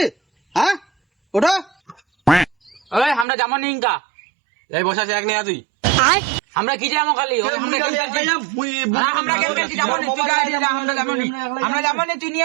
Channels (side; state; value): left; drops out; at 3.2 s